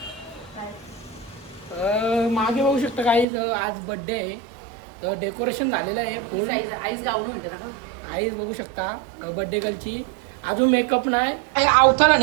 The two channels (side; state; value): left; drops out; at 3.2 s